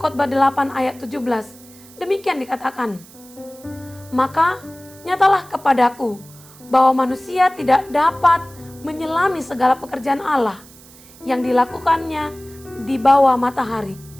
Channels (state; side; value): noise; right; hiss, 22 dB below the sound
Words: 8 ayat 17. Demikian dikatakan, maka nyatalah kepadaku bahwa manusia tidak dapat menyelami segala pekerjaan Allah yang dilakukannya di bawah matahari.